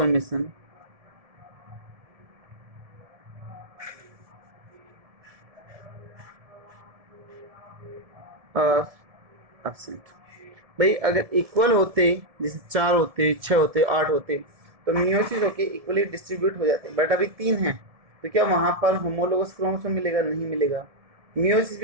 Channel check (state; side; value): late; left; 1.7 ms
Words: are absent. भाई अगर इक्वल होते, जैसे 4 होते, 6 होते, 8 होते, तो मियोसिस होके इक्वली डिस्ट्रीब्यूट हो जाते हैं, बट अभी 3 हैं, तो क्या वहां पर होमोलोगस क्रोमोसोम मिलेगा? नहीं मिलेगा। मियोसिस